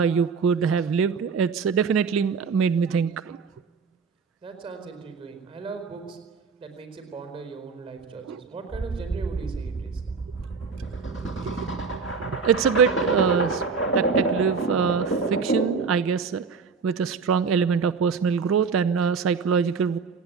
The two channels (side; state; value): left; quieter; 5.3 dB